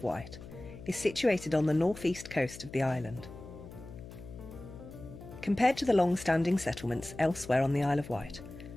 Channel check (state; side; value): noise; left; hum, 15 dB below the sound